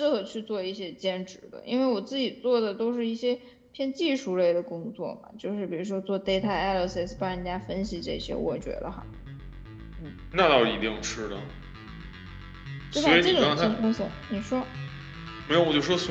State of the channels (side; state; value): both; identical; correlation 1.00